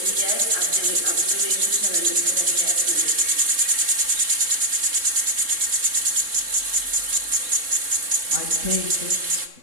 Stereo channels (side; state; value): left; late; 3.7 ms